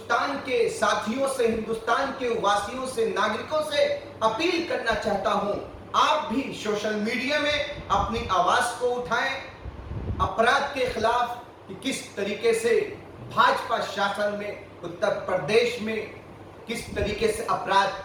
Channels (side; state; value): both; identical; correlation 1.00